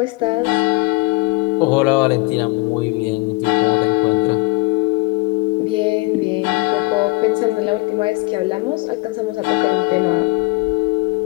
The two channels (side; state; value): right; quieter; 24.8 dB